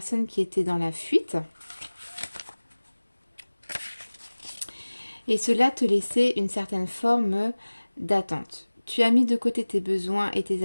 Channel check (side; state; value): both; inverted; correlation -1.00